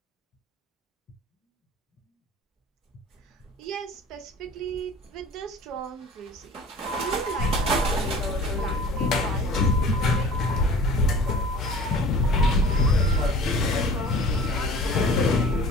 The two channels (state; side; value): normal; both; correlation 0.44